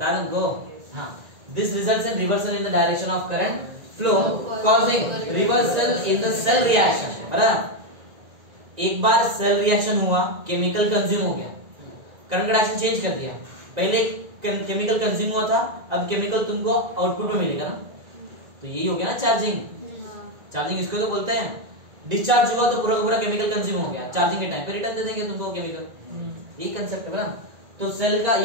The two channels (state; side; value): late; left; 1.9 ms